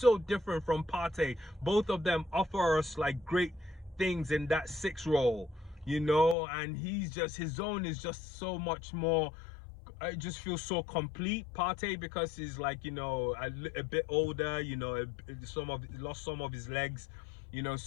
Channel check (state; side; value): drops out; right; at 6.4 s